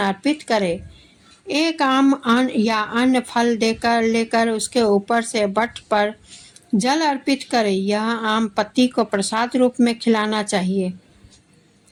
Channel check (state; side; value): identical; both; correlation 1.00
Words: करें। एक आम या अन्य फल लेकर उसके ऊपर से वट पर जल अर्पित करें। यह आम पत्ती को प्रसाद रूप में खिलाना चाहिए।